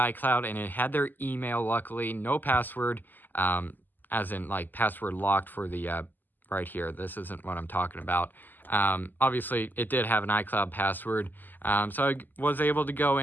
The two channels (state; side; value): late; right; 0.088 ms